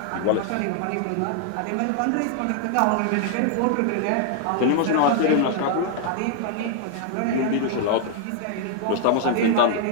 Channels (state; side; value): different; both; correlation 0.00